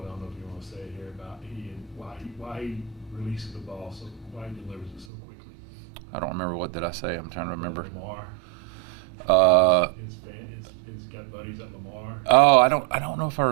I don't know if you want to say it here about why he releases the ball, so why he delivers it so quickly. I don't remember, what did I say? I'm trying to remember. Lamar. He's got buddies at Lamar. Oh, I don't know if I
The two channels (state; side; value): drops out; left; at 5.1 s